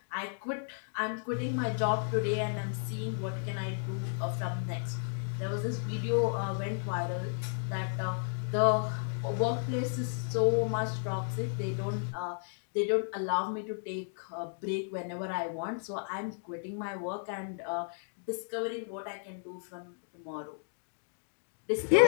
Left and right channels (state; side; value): silent; right; digital silence